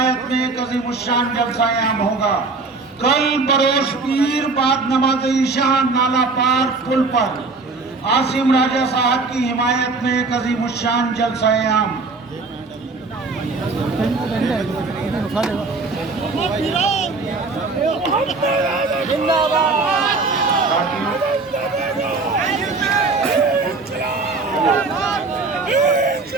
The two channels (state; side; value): quieter; left; 3.9 dB